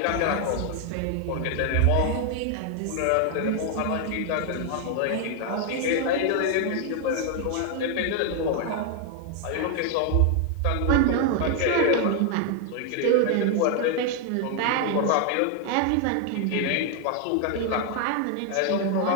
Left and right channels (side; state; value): both; different; correlation 0.00